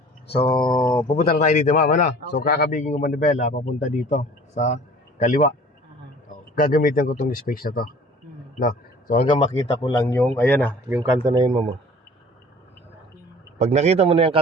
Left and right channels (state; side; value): normal; both; correlation 0.48